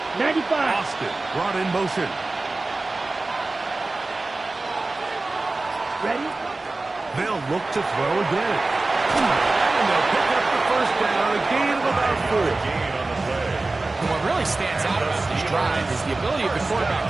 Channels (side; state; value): left; quieter; 3.2 dB